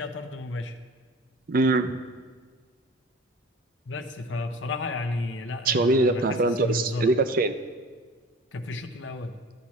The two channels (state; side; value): normal; both; correlation 0.41